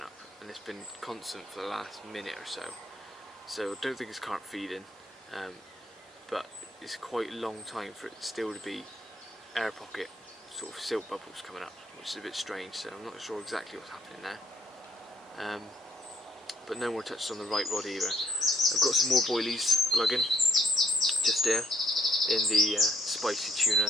up, and it's been constant for the last minute or so. So I don't think it's carp feeding, but it's quite a long time for it still to be air pocket sort of silt bubbles coming up, which is a bit strange, so I'm not sure exactly what's happening there. But no more touches on the right rod either. I've got some more boilies glugging just here in the spicy tuna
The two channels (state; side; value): normal; both; correlation 0.67